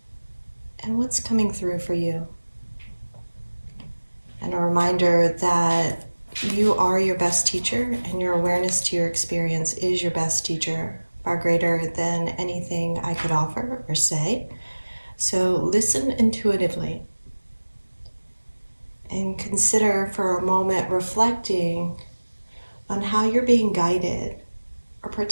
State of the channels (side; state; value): both; inverted; correlation -1.00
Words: and what's coming through for you. And a reminder that you are your best teacher, and your awareness to your experience is your best teacher, far greater than anything I could offer or say. So listen intuitively and consider for a moment reflecting on how you're being guided or